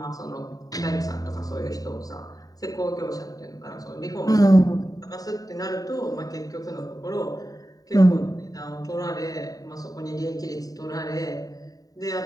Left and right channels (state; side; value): late; right; 0.18 ms